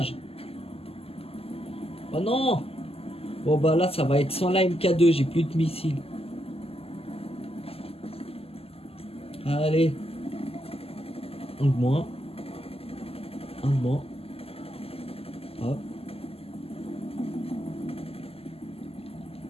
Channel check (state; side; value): late; right; 0.29 ms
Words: Oh non! Bon bah là ça va être sans la MK2, j'ai plus de missiles. Allez. Un de moins. Un de moins. Hop.